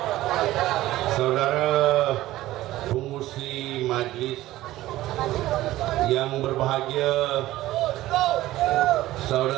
Saudara pengurusi majlis yang berbahagia,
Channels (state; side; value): quieter; left; 15.9 dB